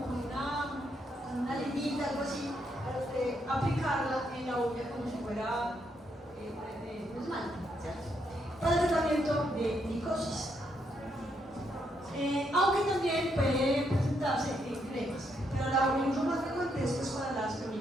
con una limita, algo así, para usted aplicarla en la uña como si fuera un esmalte, ¿cierto? Para el tratamiento de micosis. Aunque también puede presentarse en cremas, pero el uso más frecuente es pues, para las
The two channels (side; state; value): both; normal; correlation 0.77